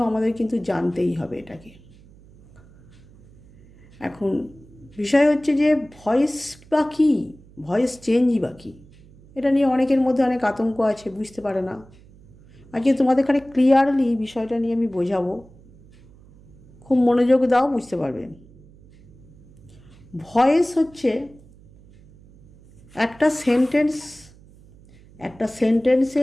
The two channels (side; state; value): right; noise; hum, 25 dB below the sound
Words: আমাদের কিন্তু জানতেই হবে এটাকে। এখন বিষয় হচ্ছে যে ভয়েস বা কী, ভয়েস চেঞ্জই বা কী, এটা নিয়ে অনেকের মধ্যে অনেক আতঙ্ক আছে, বুঝতে পারে না। আজকে তোমাদের এখানে ক্লিয়ারলি বিষয়টা নিয়ে আমি বোঝাবো, খুব মনোযোগ দাও, বুঝতে পারবে। ভয়েস হচ্ছে একটা